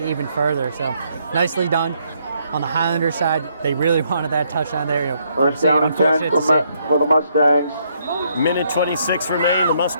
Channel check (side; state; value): both; inverted; correlation -0.72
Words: further. So nicely done. On the Highlander side, they really wanted that touchdown there. First down and 10 for the Mustangs. Minute 26 remain. The